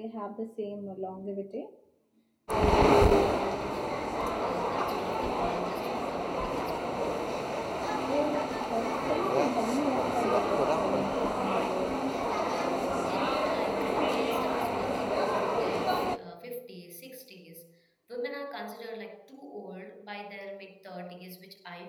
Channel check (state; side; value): identical; both; correlation 1.00